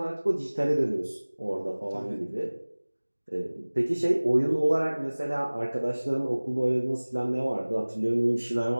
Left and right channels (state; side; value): inverted; both; correlation -1.00